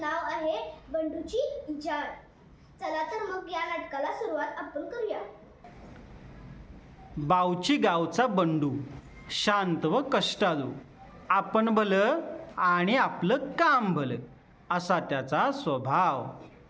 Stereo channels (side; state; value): both; identical; correlation 1.00